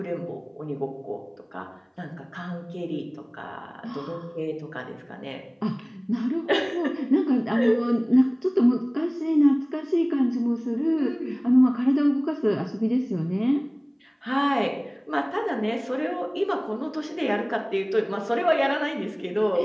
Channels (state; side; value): identical; both; correlation 1.00